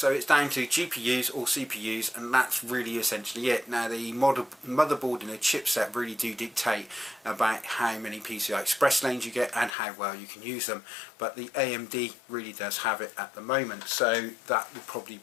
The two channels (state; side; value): drops out; right; at 9.8 s